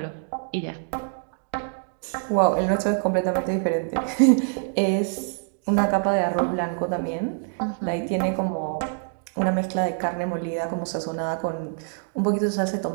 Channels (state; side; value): silent; left; 62 dB below the other